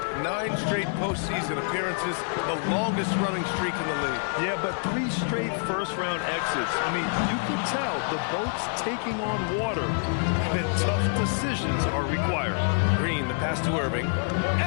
9 straight postseason appearances, the longest running streak in the league. Yeah, but 3 straight first-round exits. I mean, you could tell the boat's taking on water, and tough decisions are required. Green, the pass to Irving,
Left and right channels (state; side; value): silent; right; 57 dB below the other